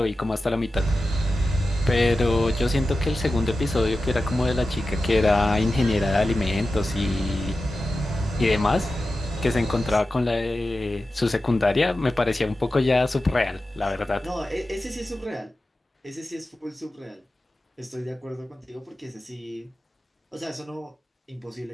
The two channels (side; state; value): both; normal; correlation 0.93